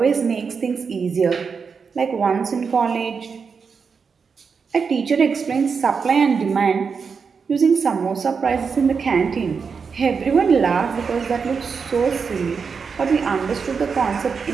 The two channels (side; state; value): left; quieter; 5.6 dB